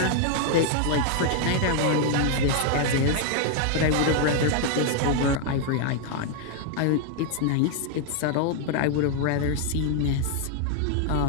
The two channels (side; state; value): both; different; correlation 0.00